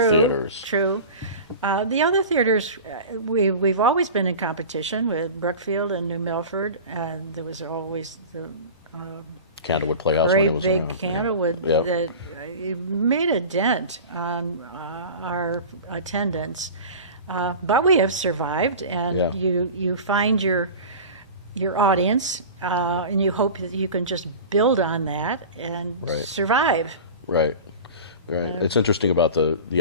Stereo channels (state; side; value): inverted; both; correlation -0.34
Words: theaters. True. The other theaters, we've always been in competition with Brookfield and New Milford, and there was always the Candlewood Playhouse very when it was big around. Candlewood Yeah. that made a dent on our attendance. But we have survived, and Yeah. you find your audience, and you hope that you can just build on that and Right. survive. Right. Right. It's interesting about